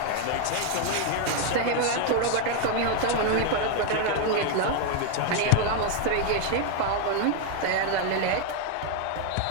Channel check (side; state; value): both; different; correlation 0.01